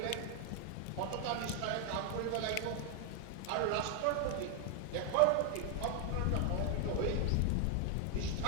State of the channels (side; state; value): both; different; correlation 0.00